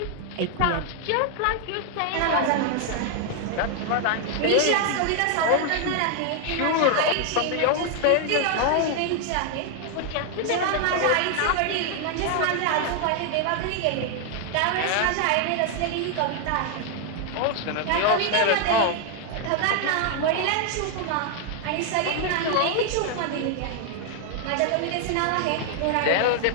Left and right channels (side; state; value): both; different; correlation 0.00